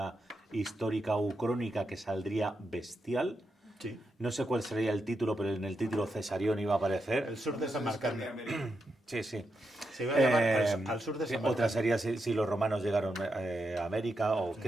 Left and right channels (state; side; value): normal; both; correlation 0.85